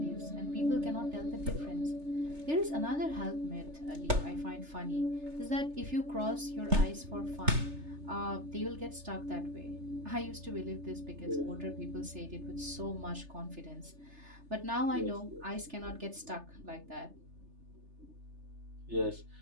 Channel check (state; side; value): late; left; 3.3 ms